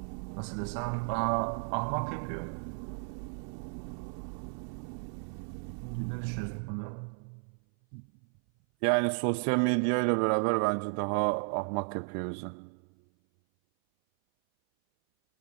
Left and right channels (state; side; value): silent; left; 55 dB below the other